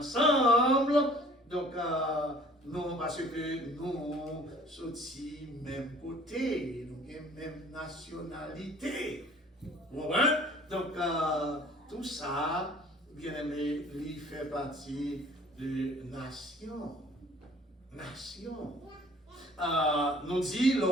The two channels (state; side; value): normal; both; correlation 0.53